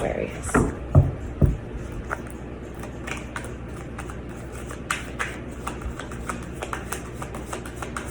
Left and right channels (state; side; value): identical; both; correlation 1.00